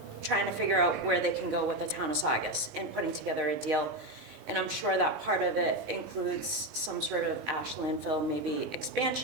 trying to figure out where they can go with the town of Saugus and putting together a deal. And I'm sure that part of it includes some sort of ash landfill, maybe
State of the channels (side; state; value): left; late; 19 ms